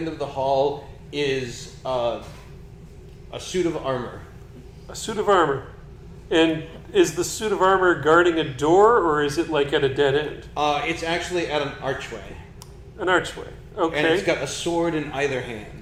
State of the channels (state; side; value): identical; both; correlation 1.00